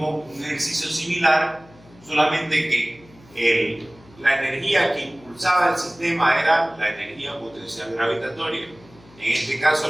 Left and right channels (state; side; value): noise; left; hum, 25 dB below the sound